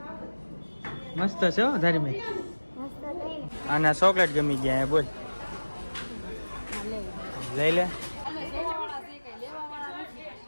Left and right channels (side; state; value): both; inverted; correlation -1.00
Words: મસ્ત છે હો ધાર્મિક. અને ચોકલેટ ગમી ગયા બોલ, લઈ લે.